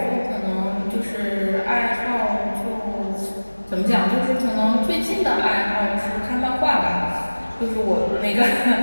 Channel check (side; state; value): both; inverted; correlation -1.00